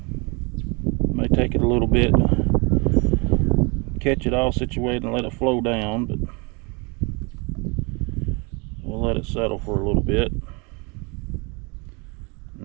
May take it a little bit to catch it all situated and let it flow down, but we'll let it settle for a little bit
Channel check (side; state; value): left; quieter; 30.5 dB